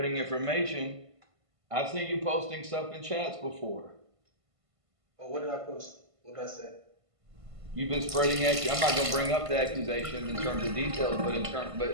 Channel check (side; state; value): left; late; 1.5 ms